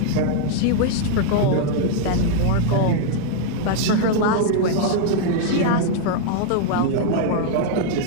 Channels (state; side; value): different; both; correlation 0.00